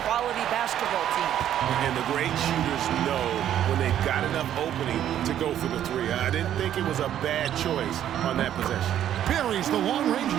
quality basketball team. And the great shooters know when they've got enough opening to go for the three. I didn't think it was a bad choice on that possession. Buries the long-range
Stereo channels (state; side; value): quieter; left; 10.8 dB